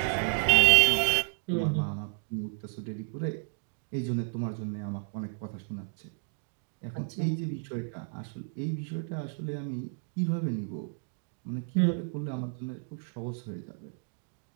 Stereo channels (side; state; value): left; silent; digital silence